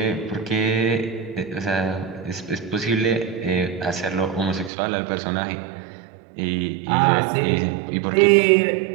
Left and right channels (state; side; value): drops out; left; at 4.7 s